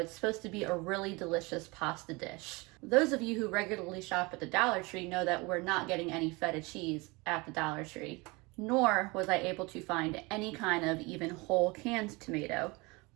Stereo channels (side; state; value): left; quieter; 25.6 dB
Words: supposed to be a really delicious pasta dish. Those of you who regularly shop at the Dollar Tree know that we're not getting any feta cheese at the Dollar Tree, nor was I able to find any kind of even whole canned tomato.